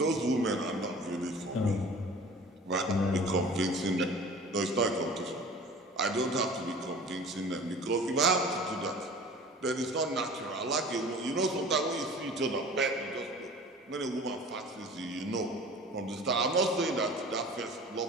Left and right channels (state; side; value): normal; both; correlation 0.43